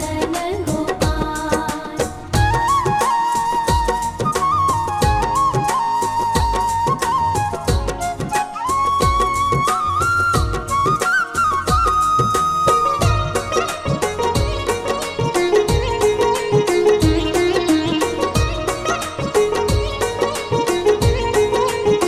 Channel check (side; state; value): both; identical; correlation 1.00